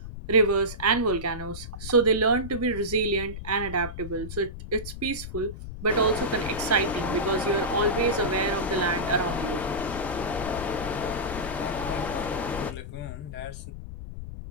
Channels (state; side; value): noise; left; rumble, 10 dB below the sound